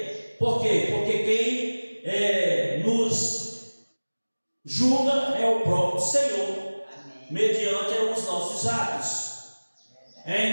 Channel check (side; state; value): both; inverted; correlation -1.00